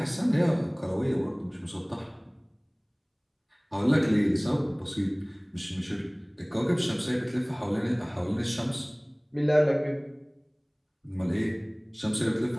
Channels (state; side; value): identical; both; correlation 1.00